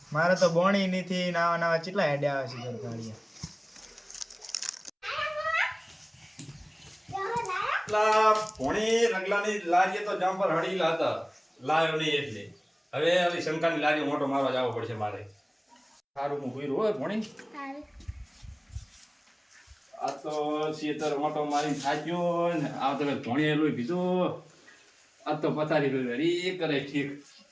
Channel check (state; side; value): identical; both; correlation 1.00